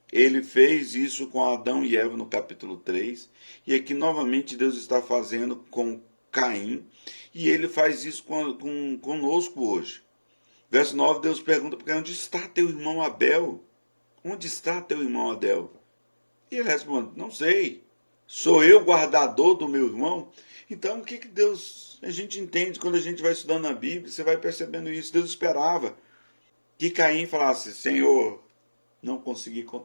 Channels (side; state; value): both; inverted; correlation -1.00